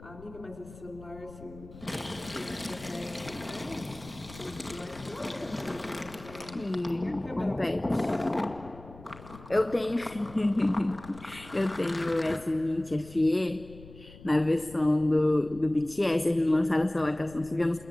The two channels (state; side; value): noise; left; rumble, 18 dB below the sound